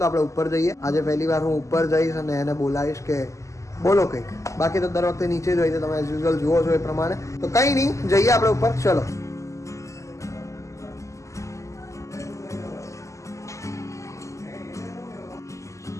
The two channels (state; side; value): late; right; 0.15 ms